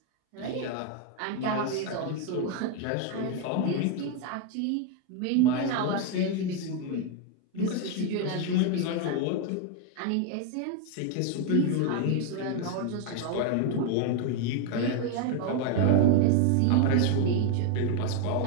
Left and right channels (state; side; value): different; both; correlation 0.01